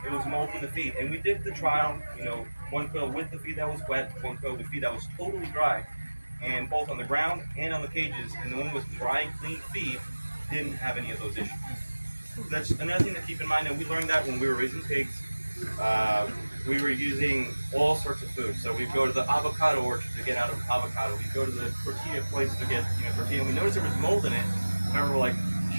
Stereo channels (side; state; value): both; inverted; correlation -1.00